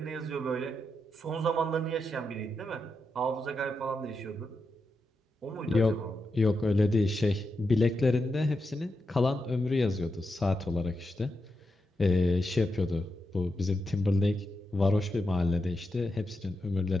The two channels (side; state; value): both; normal; correlation 0.86